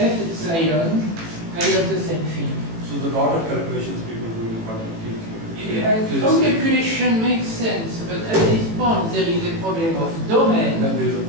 epsilon, I have the same thing. So the lot of calculations people do in quantum field. Some calculation makes sense, but at this point there is a problem of domain. And there is a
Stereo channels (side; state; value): left; late; 18 ms